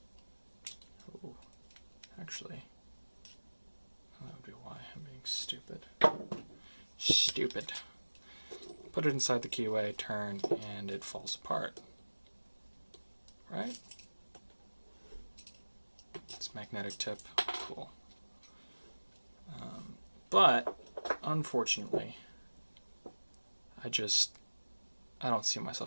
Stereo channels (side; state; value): both; inverted; correlation -1.00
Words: Oh, actually, that would be why I'm being stupid. Stupid. Put it inside the keyway, turn, and it falls apart. Right? It's magnetic tip. Cool. But, unfortunately, I don't see